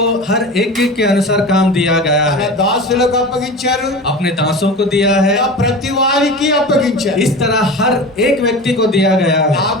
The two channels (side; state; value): both; normal; correlation 0.31